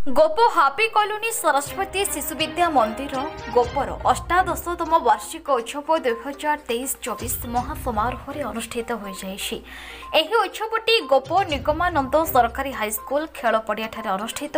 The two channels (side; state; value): both; identical; correlation 1.00